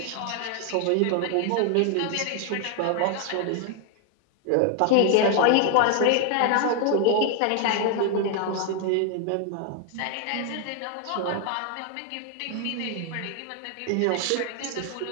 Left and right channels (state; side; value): different; both; correlation 0.00